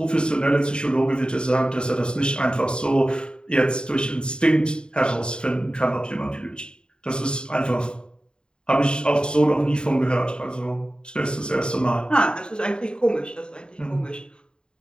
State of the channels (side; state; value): right; late; 0.050 ms